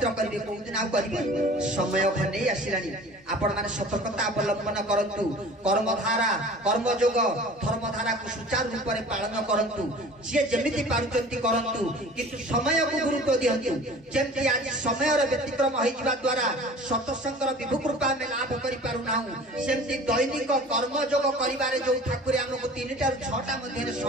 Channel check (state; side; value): normal; both; correlation 0.44